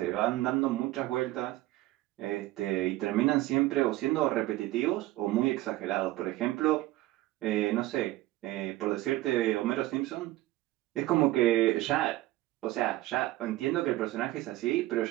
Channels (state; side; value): quieter; left; 17.3 dB